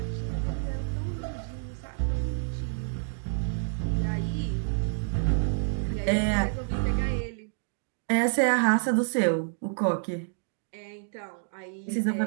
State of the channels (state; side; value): silent; left; digital silence